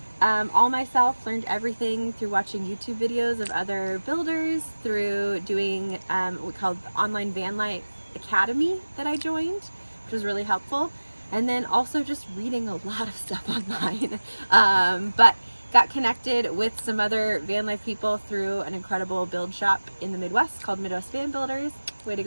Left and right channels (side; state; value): both; inverted; correlation -1.00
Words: all myself, learned everything through watching YouTube videos of other builders, through doing what we called the online van life academy that I joined, which was really helpful. And then also just reading a lot of stuff online. But got connected with some other van life people through an incredible build shop in the Midwest called Midwest Van Builders. Way to